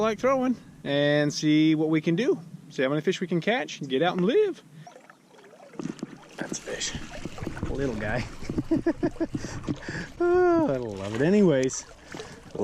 throwing and see what we can do. See how many fish we can catch and get out and live. That's a fish. A little guy. Oh, I love it anyways.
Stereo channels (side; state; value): both; identical; correlation 1.00